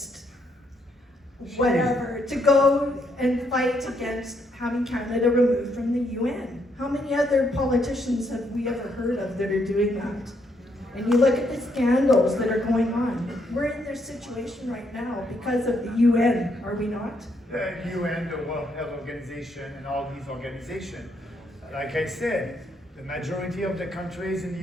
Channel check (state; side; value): normal; both; correlation 0.74